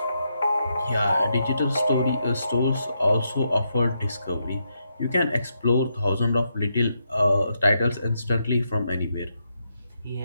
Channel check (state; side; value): inverted; both; correlation -0.81